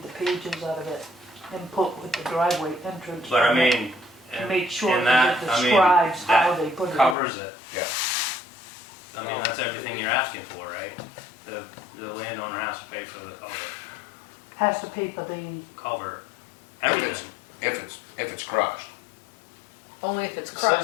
the pages out of it and put with the driveway entrance. But I on it mean, To make sure in that that, it I mean, describes how that they put it in. covers it. Yeah. I mean, that's everything you're asking for, right? The landowner has to pay for the Has to pay for the, culvert, If everything. if it's crushed. Only if it's It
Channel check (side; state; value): right; drops out; at 7.2 s